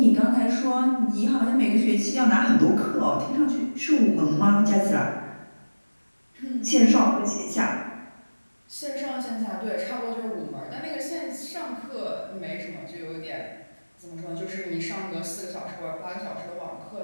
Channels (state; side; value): inverted; both; correlation -1.00